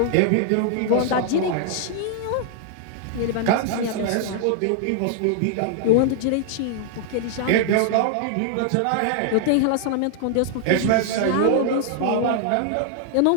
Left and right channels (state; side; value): different; both; correlation 0.00